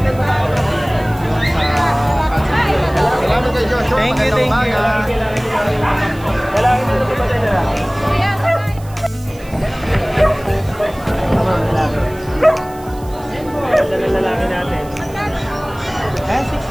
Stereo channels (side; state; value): right; noise; hiss, 23 dB below the sound